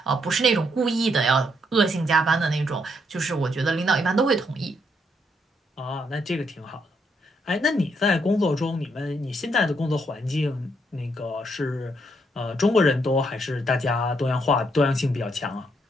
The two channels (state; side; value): normal; both; correlation 0.75